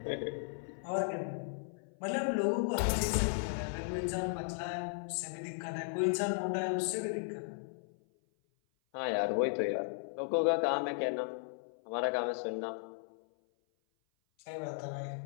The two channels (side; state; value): right; silent; 54 dB below the other